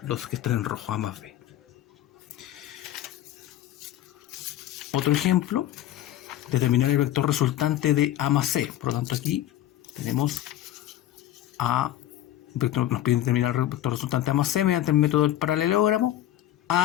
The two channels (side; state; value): right; quieter; 13.2 dB